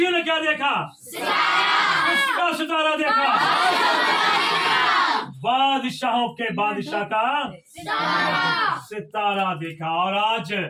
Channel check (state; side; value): identical; both; correlation 1.00